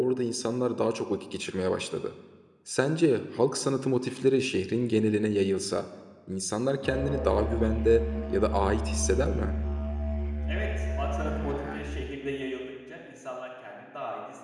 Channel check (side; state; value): both; identical; correlation 1.00